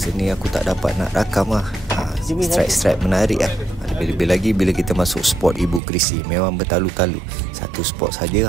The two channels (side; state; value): left; drops out; at 5.8 s